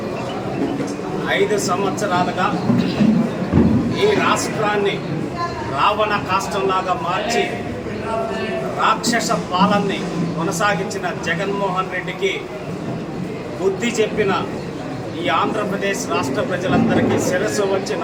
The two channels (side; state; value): both; identical; correlation 1.00